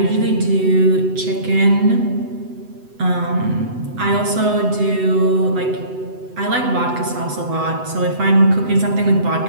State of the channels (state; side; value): late; left; 8.0 ms